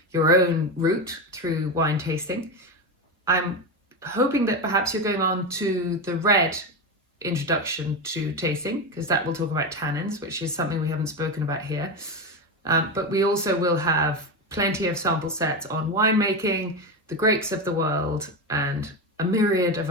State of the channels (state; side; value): normal; both; correlation 0.16